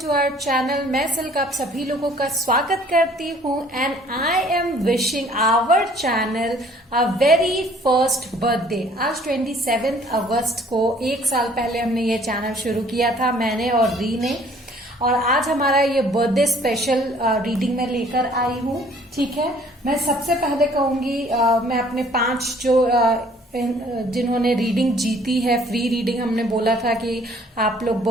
to our channel. मैं सिल्क आप सभी लोगों का स्वागत करती हूँ and I am wishing our channel a very first birthday. आज 27 अगस्त को 1 साल पहले हमने ये चैनल शुरू किया था, मैंने और री ने। और आज हमारा ये बर्थडे स्पेशल रीडिंग में लेकर आई हूँ। ठीक है, मैं सबसे पहले कहूंगी मैं अपने 5 जो जिन्होंने रीडिंग जीती है, फ्री रीडिंग हमने बोला था कि आप लोग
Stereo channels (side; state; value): both; normal; correlation 0.57